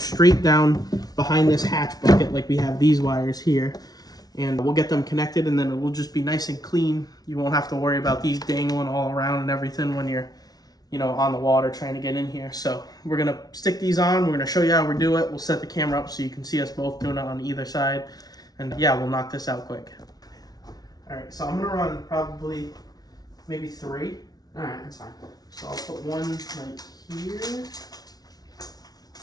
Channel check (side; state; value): right; late; 0.19 ms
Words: down behind this hatch bucket like we have these wires here. And we'll get them connected, and then it will just be nice and clean. You won't have to worry about these dangling all around and everything when you're, you know, on the water trying to get in here. So we're gonna stick these on. We're gonna show you how we do it. We'll set the camera up so you can see us both doing it on either side. And yeah, we'll knock this out quick. All right, so I'm gonna run probably maybe 3. All right, that's fine. So I'll put one like here.